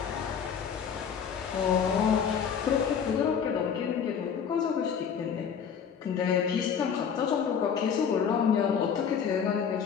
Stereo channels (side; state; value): right; quieter; 7.3 dB